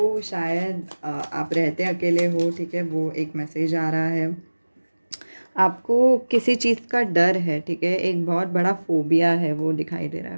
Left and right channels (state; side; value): inverted; both; correlation -1.00